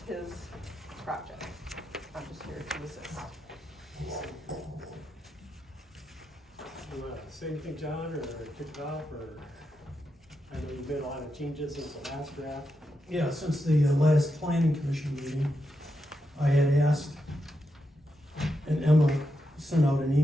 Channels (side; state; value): both; normal; correlation 0.85